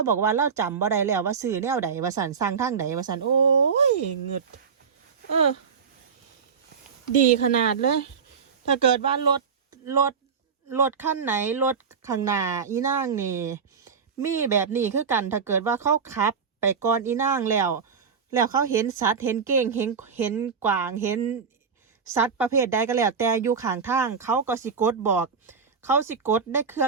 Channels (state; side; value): quieter; left; 6.1 dB